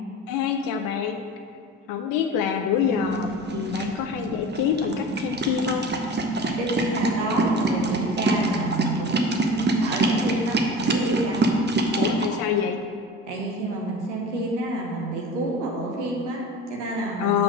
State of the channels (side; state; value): both; normal; correlation 0.35